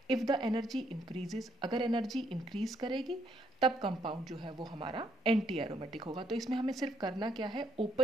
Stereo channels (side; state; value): both; normal; correlation 0.72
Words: इफ़ द एनर्जी इंक्रीजेज, अगर एनर्जी इंक्रीज करेगी तब कंपाउंड जो है वो हमारा एंटी एरोमेटिक होगा। तो इसमें हमें सिर्फ करना क्या है,